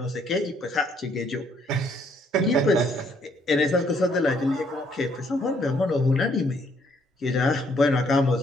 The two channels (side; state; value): both; normal; correlation 0.67